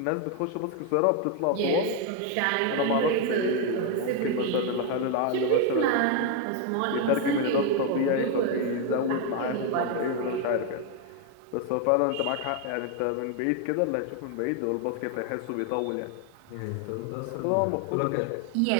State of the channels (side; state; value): both; different; correlation 0.01